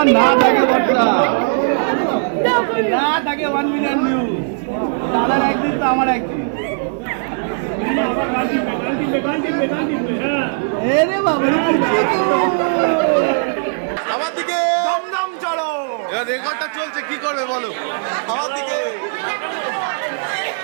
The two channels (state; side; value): silent; left; digital silence